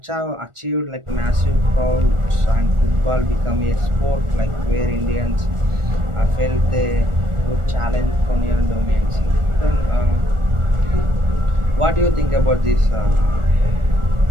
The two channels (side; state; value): left; late; 1.4 ms